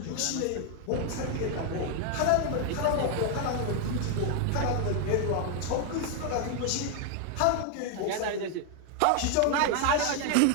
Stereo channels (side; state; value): both; different; correlation 0.00